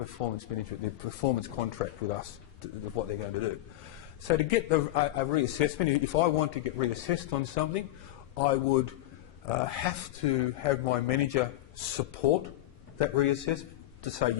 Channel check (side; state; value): right; quieter; 15.5 dB